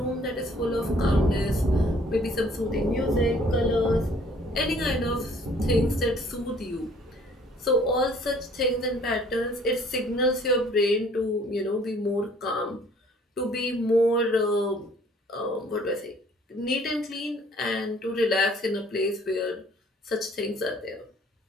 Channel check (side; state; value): both; normal; correlation 0.57